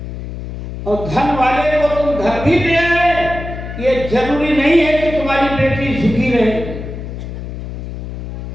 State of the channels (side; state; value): left; noise; hum, 8 dB below the sound